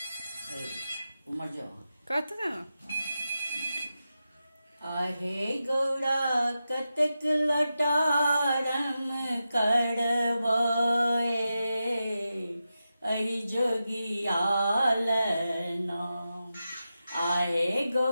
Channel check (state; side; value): inverted; both; correlation -0.91